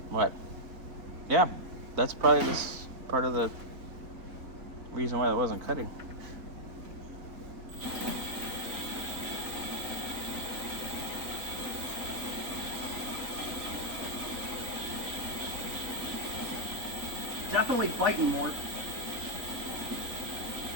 What? Yeah, that's probably this part of the reason why it wasn't cutting. Definitely biting more.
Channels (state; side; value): late; left; 3.5 ms